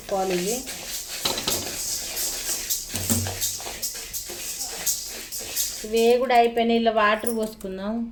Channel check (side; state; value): both; identical; correlation 1.00